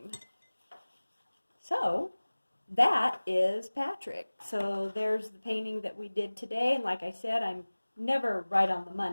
So that is Patrick. So there's the painting that we did today. And like I said, I'm never right on the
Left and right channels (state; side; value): inverted; both; correlation -1.00